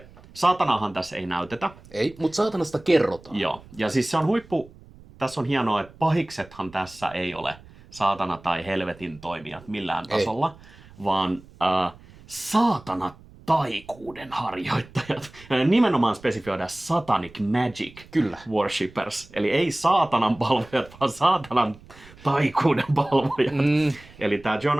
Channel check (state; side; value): noise; right; rumble, 22 dB below the sound